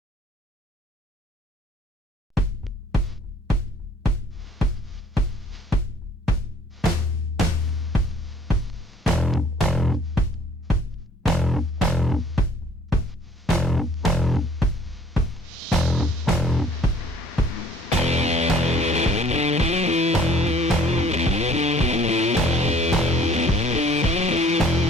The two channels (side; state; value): both; normal; correlation 0.57